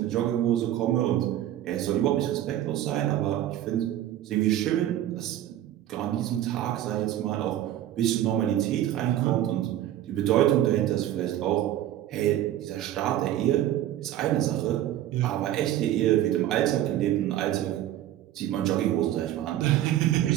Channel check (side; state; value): left; quieter; 12.6 dB